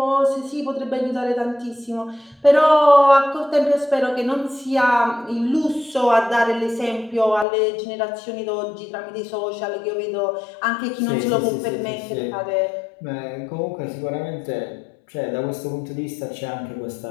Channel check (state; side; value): drops out; right; at 7.5 s